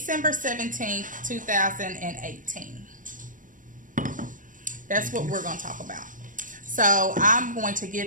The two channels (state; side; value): late; left; 0.38 ms